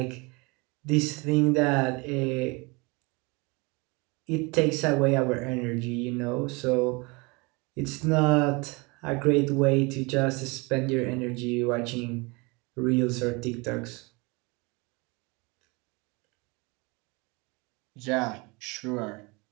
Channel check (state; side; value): quieter; left; 27.4 dB